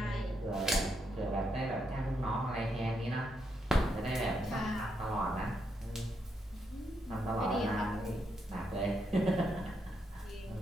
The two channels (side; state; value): both; normal; correlation 0.80